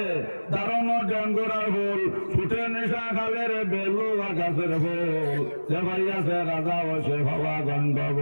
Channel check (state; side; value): inverted; both; correlation -1.00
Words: দারুণ ডেঙ্গুরার ফুল ফুটে নিশা খালের বেলুয়া গাছের ফুল, যে ভাই আছে রাজা হয়েছে ভাবা